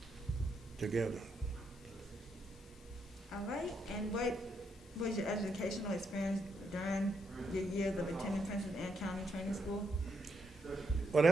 together. All right. And what was your educational experience during your years of attending Princess Anne County Training School? Well,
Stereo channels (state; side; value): normal; both; correlation 0.78